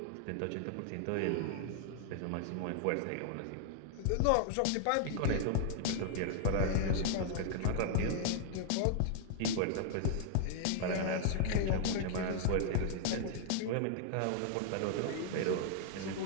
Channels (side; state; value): both; different; correlation 0.00